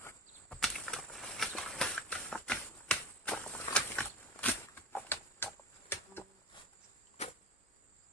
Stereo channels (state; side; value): normal; both; correlation 0.30